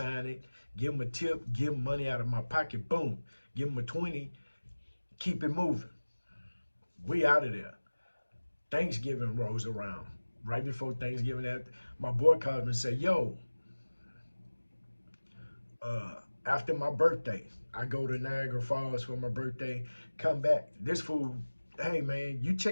it, give him a tip, give him money out of my pocket, boom. Give him a 20, keep it moving. We out of there. Thanksgiving rolls around. Right before Thanksgiving, my boy calls me and say, yo, after my birthday, I go to Niagara Falls for my birthday, come back. This fool, hey man, you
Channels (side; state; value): both; inverted; correlation -1.00